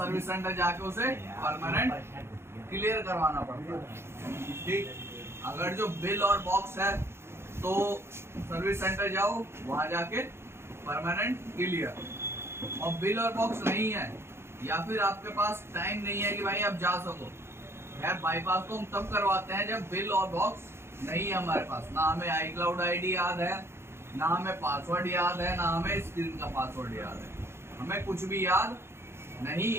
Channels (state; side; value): late; left; 0.12 ms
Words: सेंटर जाके उसे परमानेंट क्लियर करवाना पड़ता है, ठीक। अगर जो बिल और बॉक्स है तो सर्विस सेंटर जाओ, वहां जाके परमानेंट क्लियर। और बिल और बॉक्स नहीं है या फिर आपके पास टाइम नहीं है कि भाई आप जा सको, यार बाईपास तो हम तब करवाते हैं जब बिल और बॉक्स नहीं है हमारे पास, ना हमें आई क्लाउड आईडी याद है, ना हमें पासवर्ड याद है, ना हमें स्क्रीन का पासवर्ड याद है, हमें कुछ भी याद नहीं